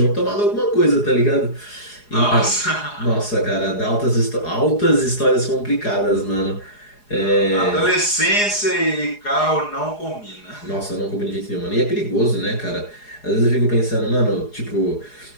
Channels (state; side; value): late; right; 4.8 ms